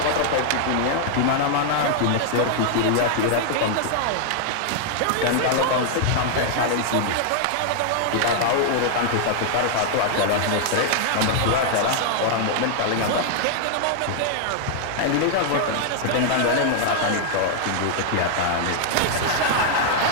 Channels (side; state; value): both; different; correlation -0.01